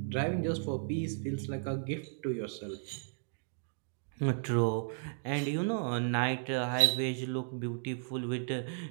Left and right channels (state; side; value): silent; left; digital silence